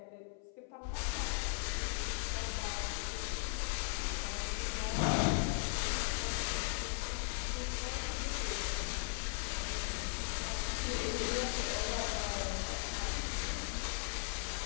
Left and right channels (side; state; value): right; silent; 52 dB below the other